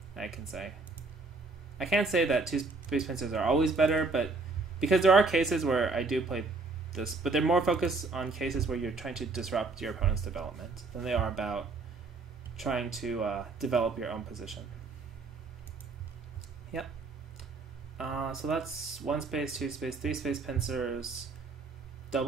I can say. I can't say that two-space pincers are always better, but because there are cases where I do play this, but they're more focused on cases where you're trying to disrupt your opponent's development than they are about trying to develop your own position. Yep. So that's one space, two space, three space pincers,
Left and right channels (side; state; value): left; quieter; 3.8 dB